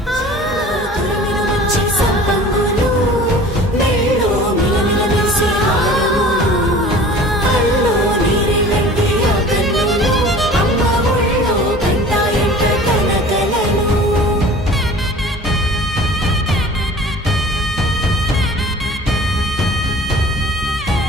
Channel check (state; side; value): normal; both; correlation 0.44